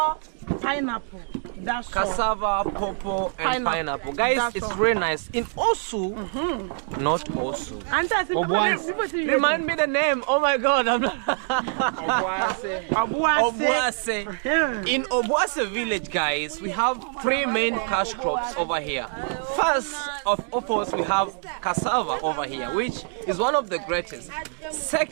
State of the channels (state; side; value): silent; left; 56 dB below the other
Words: pineapple. That's all. Cassava, pawpaw, and pineapple. Guys, That's it's all. really nice. In Osu, not Osu. And that's people see Remind me the name. Oh my God, I'm not. Obuasi. Obuase. Yeah. In Obuase village, guys, we have three main cash crops over here. First of all, we have cassava over here, which is one of the greatest.